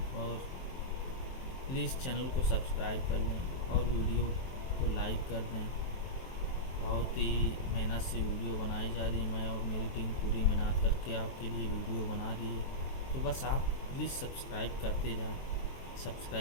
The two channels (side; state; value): right; late; 23 ms